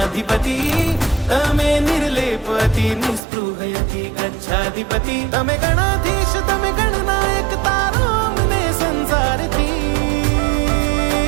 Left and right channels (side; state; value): left; drops out; at 3.2 s